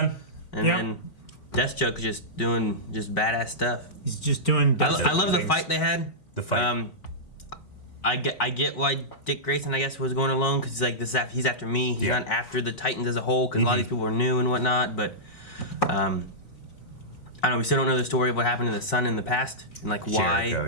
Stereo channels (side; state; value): right; late; 3.9 ms